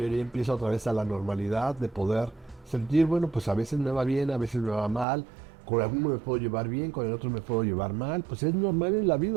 empieza otra vez a la normalidad de poder sentir, bueno, pues a veces me va bien, a veces me va mal. Con alguno me puedo llevar bien, con el otro me puedo llevar mal. Pues es normal en la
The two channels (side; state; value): left; drops out; at 5.1 s